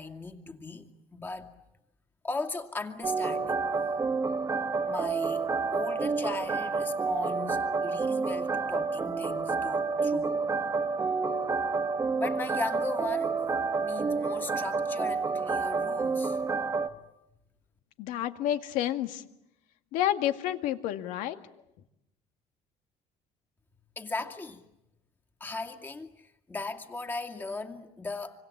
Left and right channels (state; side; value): normal; both; correlation 0.62